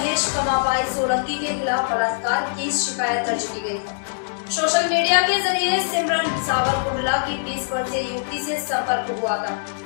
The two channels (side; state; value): right; silent; digital silence